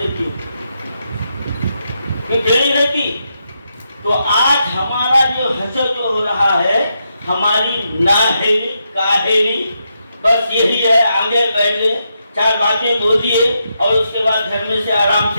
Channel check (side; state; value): both; inverted; correlation -0.83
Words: टेढ़ी रहती। तो आज हमारा जो हसर जो हो रहा है, हमारी नाहेली काहेली बस यही है, आगे बैठे 4 बातें बोल दिए और उसके बाद घर में से आराम